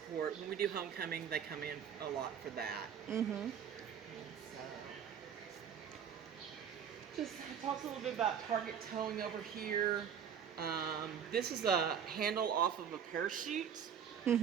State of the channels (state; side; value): quieter; left; 8.1 dB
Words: When we do homecoming, they come in a lot for that. Just talks a little bit about target towing over here. This is a handle off of a parachute.